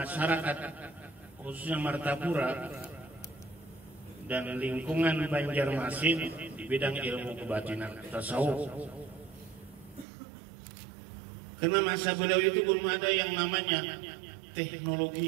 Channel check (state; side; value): drops out; left; at 10.1 s